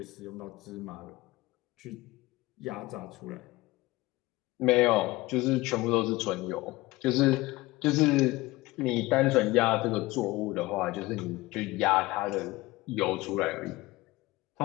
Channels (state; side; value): quieter; right; 20.0 dB